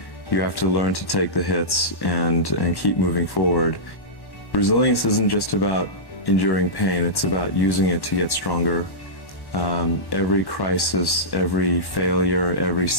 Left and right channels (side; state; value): right; late; 1.1 ms